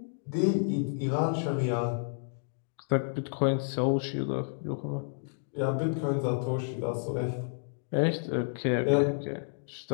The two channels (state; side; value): silent; right; digital silence